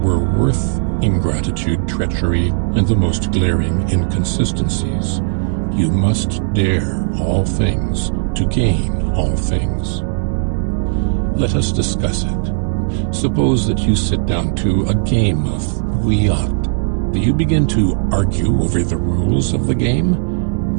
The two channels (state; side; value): silent; left; 68 dB below the other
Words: were worth ingratitude, treachery, and the most glaring inconsistencies. You must dare all things to gain all things. Let us discuss it. Suppose that you sit down to a game of bouillotte. Do you begin to argue over the rules of the game?